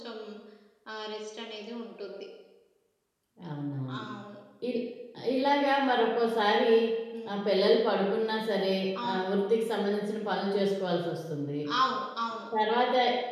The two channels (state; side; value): identical; both; correlation 1.00